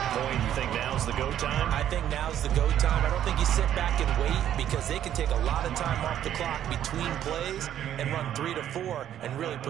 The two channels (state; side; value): quieter; left; 10.8 dB